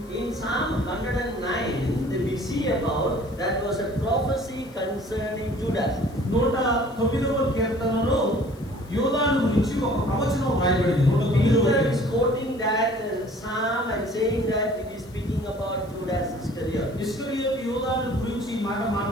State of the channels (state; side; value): noise; left; hiss, 26 dB below the sound